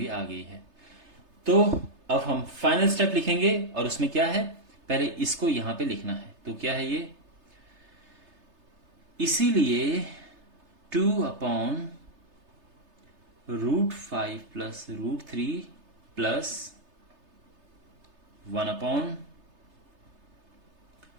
आ गई है। तो अब हम फाइनल स्टेप लिखेंगे, और उसमें क्या है, पहले इसको यहां पे लिखना है। तो क्या है ये, इसीलिए 2/√5 plus √3 plus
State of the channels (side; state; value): left; late; 3.3 ms